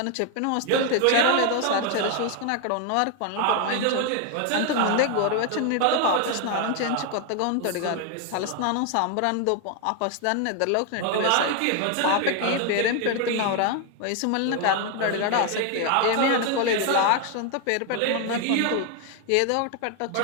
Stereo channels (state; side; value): different; both; correlation 0.01